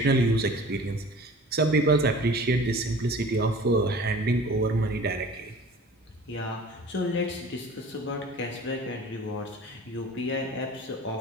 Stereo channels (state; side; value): normal; both; correlation 0.43